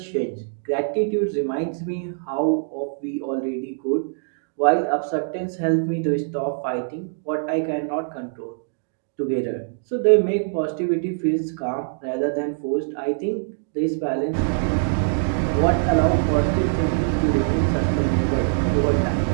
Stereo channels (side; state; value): left; silent; digital silence